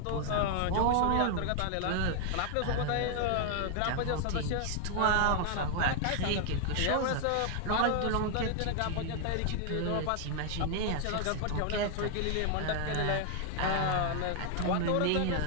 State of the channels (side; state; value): both; different; correlation 0.00